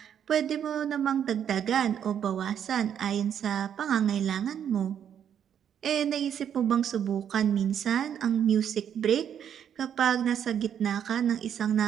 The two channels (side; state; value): left; quieter; 8.9 dB